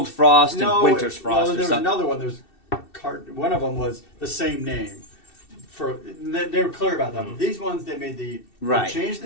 Frost and Winter's Frost Well, or there was something. another one. One of them was the same name. They were clear about that. But these ones, they made they changed the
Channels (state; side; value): late; right; 2.7 ms